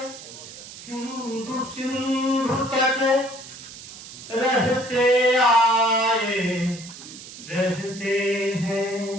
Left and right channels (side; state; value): right; noise; hiss, 15 dB below the sound